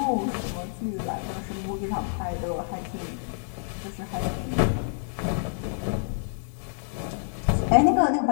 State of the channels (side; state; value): right; silent; digital silence